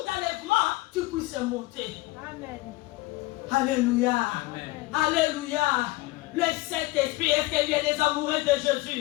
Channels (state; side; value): quieter; right; 20.3 dB